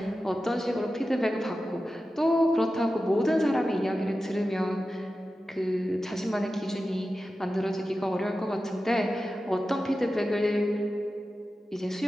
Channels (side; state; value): both; normal; correlation 0.93